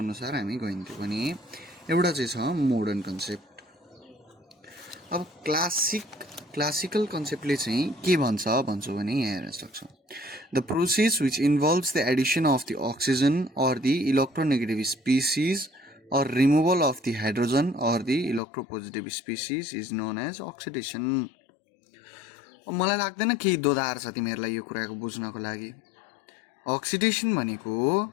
हामी गइन्थ्यो भने एउटा चाहिँ छ मोडर्न कन्सेप्ट। अब क्लासिकल कन्सेप्टले चाहिँ के भन्छौँ भने यहाँ हेर्न सक्छौँ the process which involves the addition of the oxygen or the electronegative species or removal of the hydrogen or the electropositive species is known as oxidation. मलाई लाग्दैन केही दोधार छ तिमीहरूलाई यो कुराको बुझ्नको लागि। अक्सिडेसन भनेको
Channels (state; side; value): drops out; right; at 18.4 s